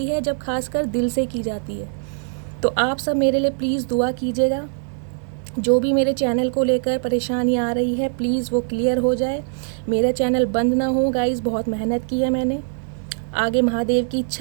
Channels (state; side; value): silent; left; digital silence